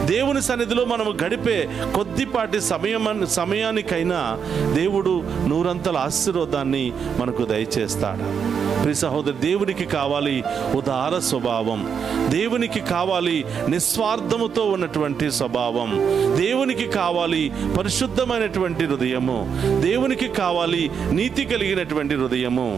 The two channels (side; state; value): left; quieter; 7.0 dB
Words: దేవుని సన్నిధిలో మనము గడిపే కొద్దిపాటి సమయానికైనా దేవుడు 100 ఆశీర్వాదాన్ని మనకు దయచేస్తాడు. ప్రియ సహోదరు, దేవునికి కావాలి ఉదార స్వభావం, దేవునికి కావాలి నిస్వార్థముతో ఉన్నటువంటి స్వభావం, దేవునికి కావాలి పరిశుద్ధమైనటువంటి హృదయము, దేవునికి కావాలి నీతి కలిగినటువంటి హృదయము.